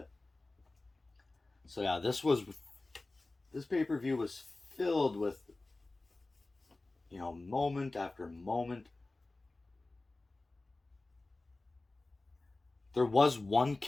So yeah, this pay-per-view was filled with moment after moment. There was one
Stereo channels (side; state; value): right; quieter; 3.1 dB